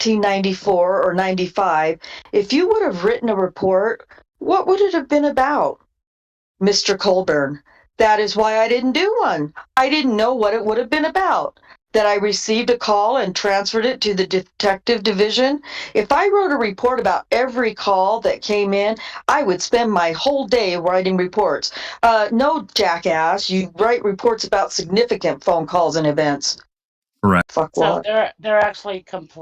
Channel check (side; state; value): both; identical; correlation 1.00